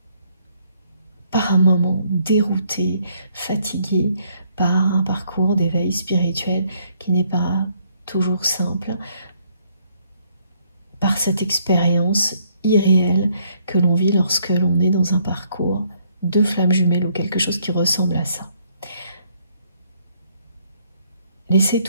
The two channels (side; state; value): both; inverted; correlation -0.69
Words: par un moment déroutées, fatiguées par un parcours d'éveil spirituel qui n'est pas toujours simple, par cette expérience irréelle que l'on vit lorsque l'on est dans un parcours de flammes jumelles ou quelque chose qui ressemble à ça. Laissez